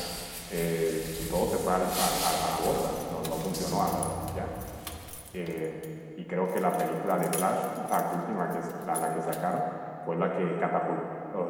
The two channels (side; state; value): both; identical; correlation 1.00